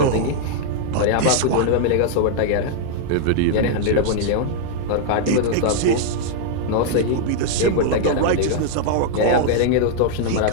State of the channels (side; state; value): both; different; correlation -0.01